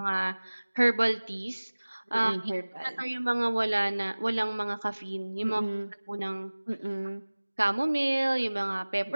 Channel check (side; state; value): both; inverted; correlation -1.00